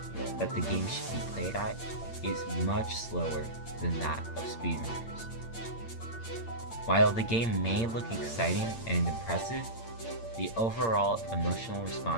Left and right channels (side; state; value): right; late; 8.7 ms